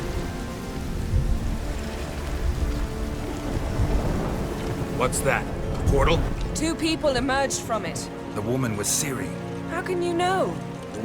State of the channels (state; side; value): identical; both; correlation 1.00